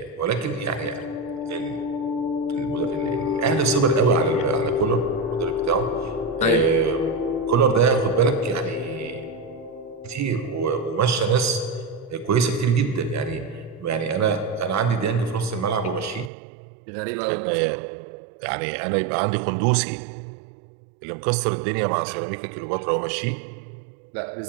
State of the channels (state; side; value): drops out; left; at 16.3 s